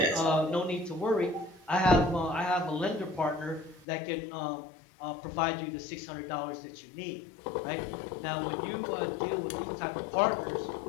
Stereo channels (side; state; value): right; drops out; at 3.9 s